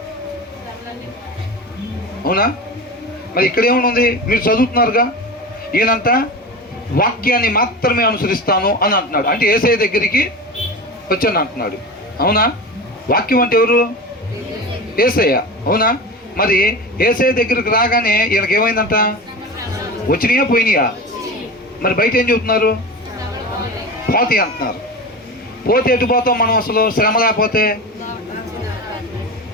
అవునా? మరి ఇక్కడ ఏమనుంది? మీరు చదువుతున్నారుగా, ఈయనంట వాక్యాన్ని మాత్రమే అనుసరిస్తాను అని అంటున్నాడు. అంటే యేసయ్య దగ్గరికి వచ్చాను అంటున్నాడు. అవునా? వాక్యం అంటే ఎవరు? యేసయ్య. అవునా? మరి యేసయ్య దగ్గరికి రాగానే ఈయనకి ఏమైందంట? వచ్చినాయా పోయినాయా? మరి బయట ఏం చెబుతున్నారు? పోతాయి అంటున్నారు. పోతే ఎటు పోతాం మనం అసలు? శ్రమ లేకపోతే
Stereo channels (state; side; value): normal; both; correlation 0.28